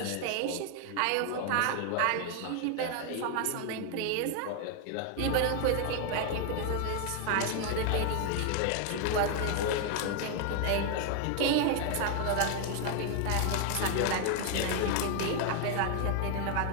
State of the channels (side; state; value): both; different; correlation 0.00